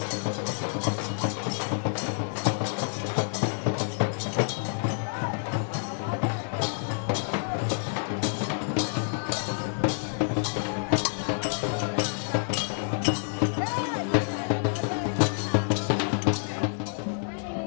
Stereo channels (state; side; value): silent; right; digital silence